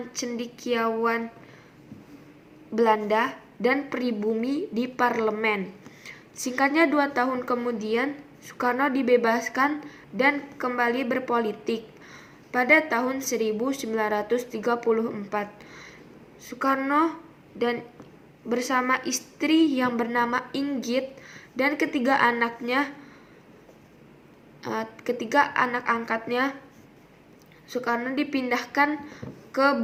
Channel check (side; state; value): both; identical; correlation 1.00